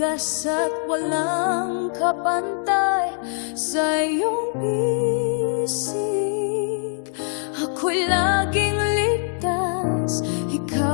at walang kapantay. Sa iyong bisig, ako'y laging ligtas.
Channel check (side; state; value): right; silent; 63 dB below the other